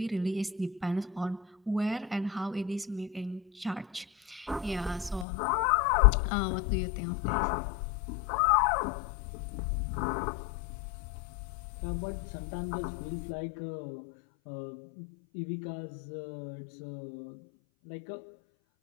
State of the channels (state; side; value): drops out; right; at 5.2 s